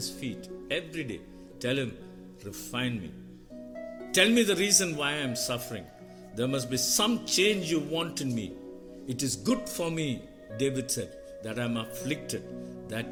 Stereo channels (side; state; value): both; identical; correlation 1.00